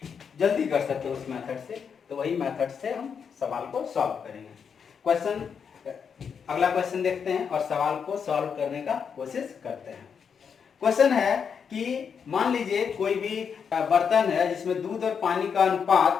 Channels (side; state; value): right; quieter; 6.7 dB